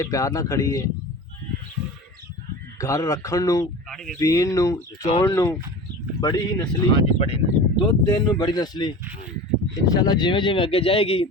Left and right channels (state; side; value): normal; both; correlation 0.34